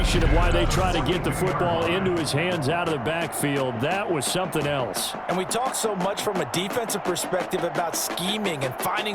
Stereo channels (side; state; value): both; identical; correlation 1.00